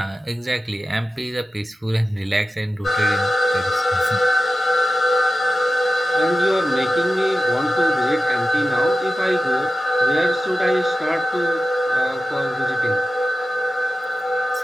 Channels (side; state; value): both; normal; correlation 0.93